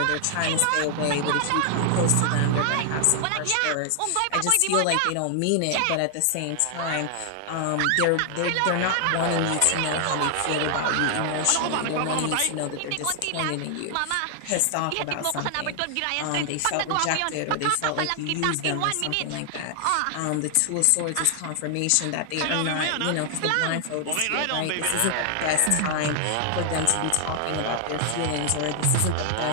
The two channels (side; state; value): both; different; correlation 0.00